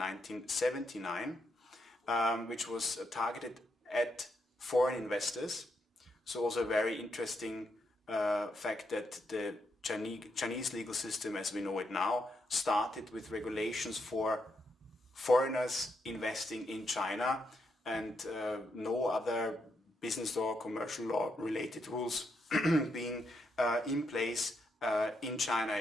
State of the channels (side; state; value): both; normal; correlation 0.80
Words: which was targeted at foreign investors. So also a very interesting fact that the Chinese legal system as we know it now started with regulations for foreigners investing in China, and no other business law, commercial law related rules being in place in China